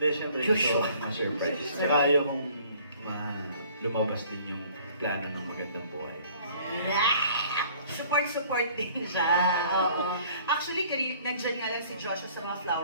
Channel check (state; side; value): inverted; both; correlation -0.54